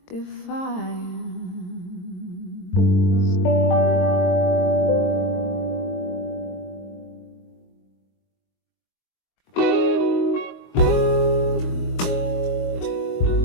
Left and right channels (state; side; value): late; right; 22 ms